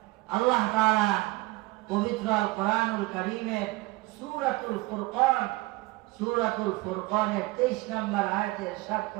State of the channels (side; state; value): left; quieter; 21.8 dB